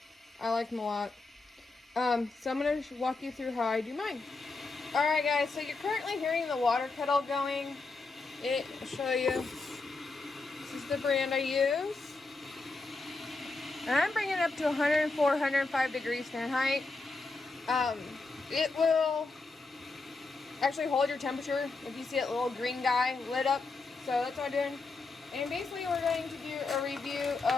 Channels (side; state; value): right; quieter; 3.7 dB